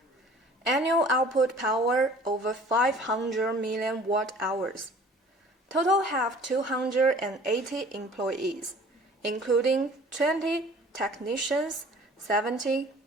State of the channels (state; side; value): normal; both; correlation 0.49